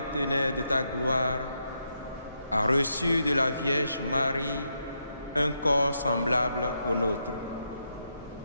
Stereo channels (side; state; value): both; inverted; correlation -0.81